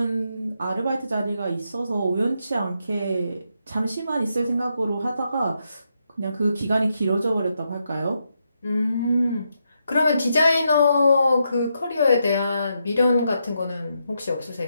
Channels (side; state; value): both; inverted; correlation -0.82